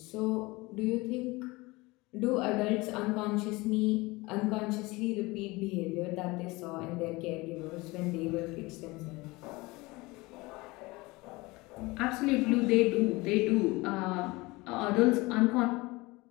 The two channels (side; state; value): right; quieter; 22.7 dB